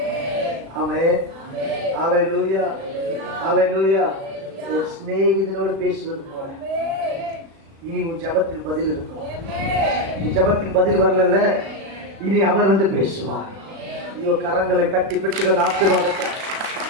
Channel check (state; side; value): late; left; 36 ms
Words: ஆமென். ஹல்லேலூயா. ஹல்லேலூயா. ஒரு சிநேகிதனோடு பேசுவது போல இனி உன் ஜபத்துக்கு பதில் இருக்கும். உன் ஜபத்துக்கு பதில் வரல, இனி அவர் வந்து பேசுவார். ஐயோ, கரங்களை கட்டி பெற்றுகள் ஆசீர்வாதத்தை.